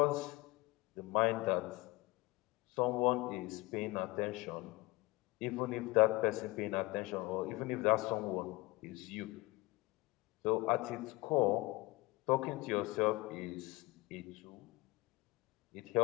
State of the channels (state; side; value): quieter; right; 22.2 dB